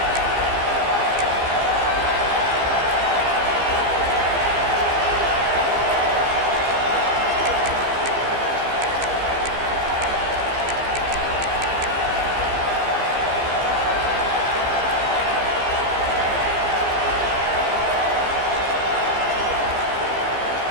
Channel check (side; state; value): left; late; 15 ms